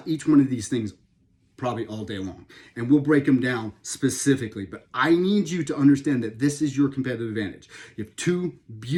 each one of these things probably all day long, and we'll break them down specifically, but I need you to understand that this is your competitive advantage. You have 2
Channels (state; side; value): identical; both; correlation 1.00